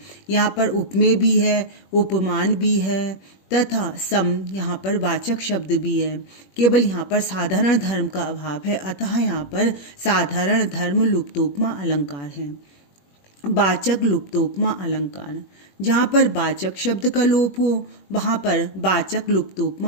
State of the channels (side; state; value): right; late; 21 ms